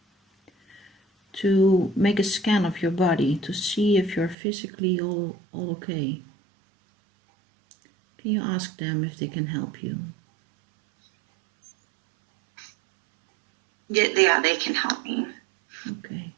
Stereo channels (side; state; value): left; drops out; at 4.4 s